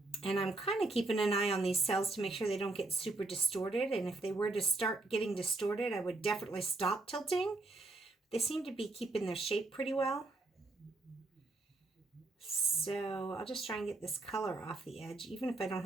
And I'm kind of keeping an eye on these cells to make sure they don't get super distorted. And if they were to start getting distorted, I would definitely stop tilting. They seem to be keeping their shape pretty well. So I'll just try and get this color off the edge, even if I don't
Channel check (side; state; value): left; quieter; 3.1 dB